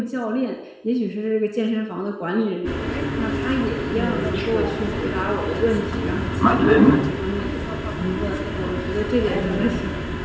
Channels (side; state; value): both; identical; correlation 1.00